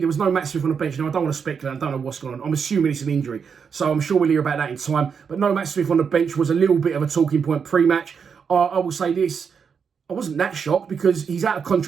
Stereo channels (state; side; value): quieter; left; 6.4 dB